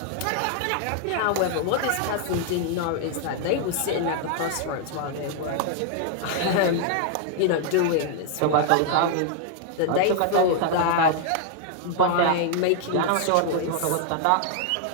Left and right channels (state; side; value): different; both; correlation 0.00